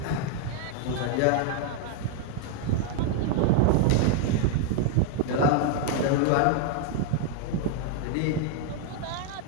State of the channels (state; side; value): different; both; correlation 0.00